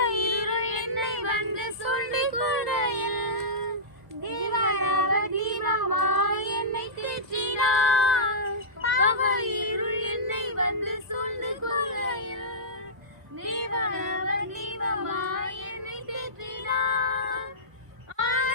இருள் என்னை வந்து சூழ்ந்து கொள்ளையில் தீபனவ தீபமாய் என்னை தேற்றினார். பாவ இருள் என்னை வந்து சூழ்ந்து கொள்ளையில் தீபனவ தீபமாய் என்னை தேற்றினார்.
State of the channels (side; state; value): left; late; 2.0 ms